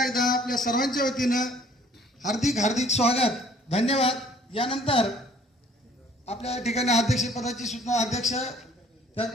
एकदा आपल्या सर्वांच्या वतीनं हार्दिक हार्दिक स्वागत, धन्यवाद. यानंतर आपल्या या ठिकाणी अध्यक्षपदाची सूचना अध्यक्ष,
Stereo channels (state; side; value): normal; both; correlation 0.56